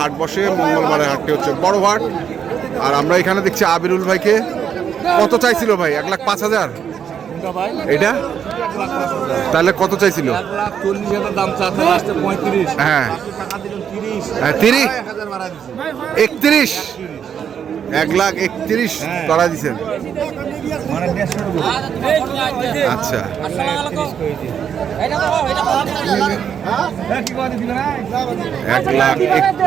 বসে। মঙ্গলবারের হাটটি হচ্ছে বড় হাট। আর আমরা এখানে দেখছি আবিরুল ভাইকে। কত চাইছিল ভাই? 1,05,000 এটা? তাহলে কত চাইছিল? 1,40,000 দাম চাচ্ছে, লাস্টে 35। হ্যাঁ, 30, 31, 1,31,000 করা দিচ্ছেন। আচ্ছা,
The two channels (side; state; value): left; quieter; 8.1 dB